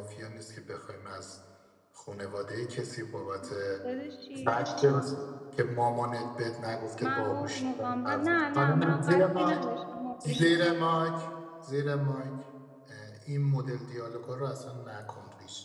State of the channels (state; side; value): identical; both; correlation 1.00